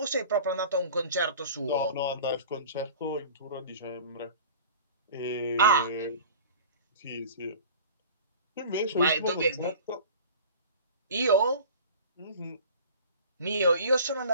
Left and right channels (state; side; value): inverted; both; correlation -0.42